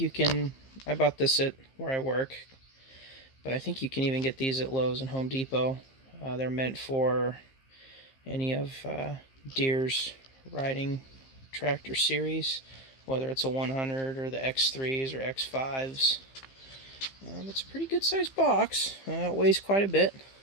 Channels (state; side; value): late; right; 15 ms